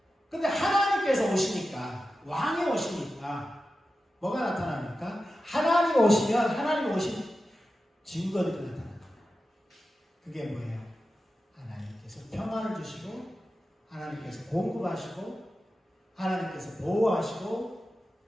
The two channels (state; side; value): normal; both; correlation 0.92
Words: 근데 하나님께서 오시니까, 왕이 오시니까 뭐가 나타납니까? 하나님이 오시면 하나님이 오신 증거들이 나타납니다. 그게 뭐예요? 하나님께서 평안을 주시고 하나님께서 공급하시고 하나님께서 보호하시고